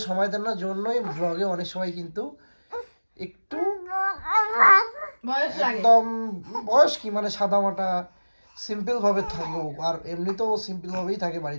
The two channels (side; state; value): both; inverted; correlation -1.00